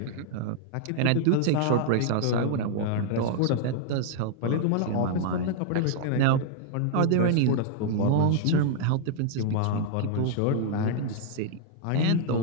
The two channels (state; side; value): different; both; correlation -0.01